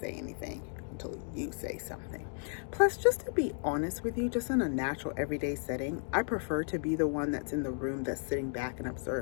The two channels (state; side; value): silent; right; 55 dB below the other